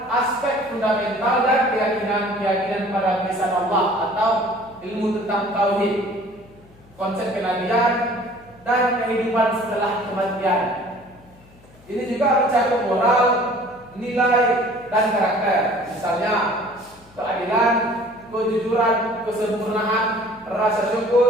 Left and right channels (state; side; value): noise; left; hum, 26 dB below the sound